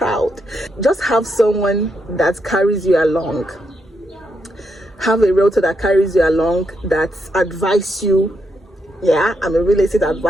Just have someone that carries you along. Have a realtor that carries you along, that advise you. Yeah, I'm a real estate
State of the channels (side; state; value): both; normal; correlation 0.80